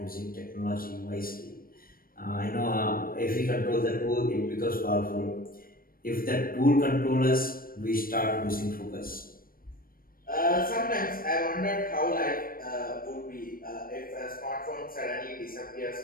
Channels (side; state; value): right; late; 0.42 ms